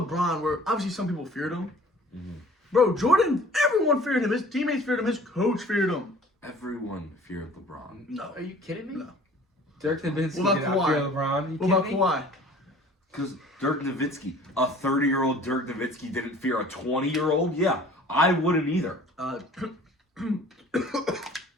where obviously some people feared him. Mm-hmm. Bro, Jordan, everyone feared him. His teammates feared him. His coach feared him. Everyone feared LeBron. No. Are you kidding me? No. Dirk Nowitzki did not fear LeBron. What about Kawhi? Because Dirk Nowitzki, a 30-year-old Dirk Nowitzki didn't fear a 20-year-old? Yeah, I wouldn't either. 27.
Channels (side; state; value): both; normal; correlation 0.49